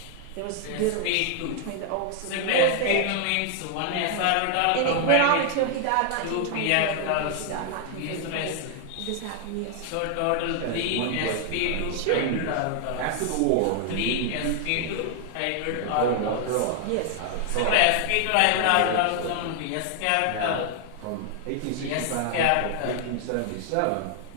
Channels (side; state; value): both; different; correlation 0.00